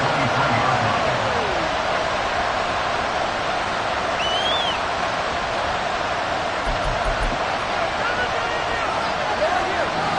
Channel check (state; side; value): identical; both; correlation 1.00